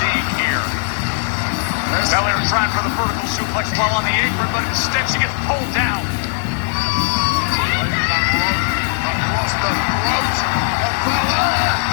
here. Belair trying for the vertical suplex while on the apron, but instead she gets pulled down. Across the throat of Belair.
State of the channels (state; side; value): silent; right; digital silence